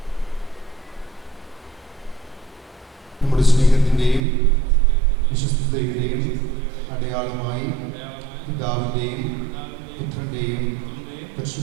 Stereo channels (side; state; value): left; drops out; at 4.2 s